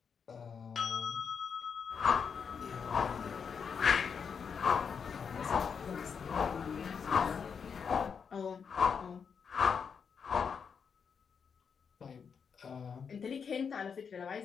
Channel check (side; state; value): right; quieter; 6.4 dB